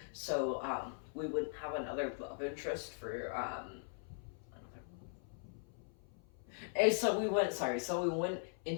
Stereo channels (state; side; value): silent; right; 51 dB below the other